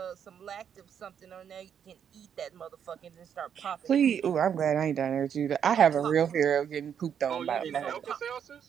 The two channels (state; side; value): quieter; left; 8.3 dB